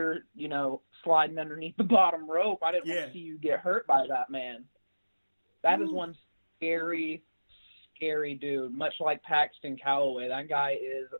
sliding underneath the bottom rope. I didn't want to see you get hurt by that man. That is one scary, scary dude. Much like Paxton Calloway, that guy is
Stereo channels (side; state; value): both; inverted; correlation -1.00